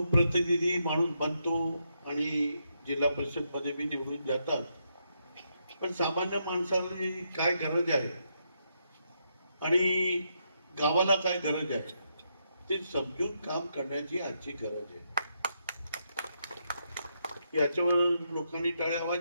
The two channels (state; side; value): inverted; both; correlation -0.79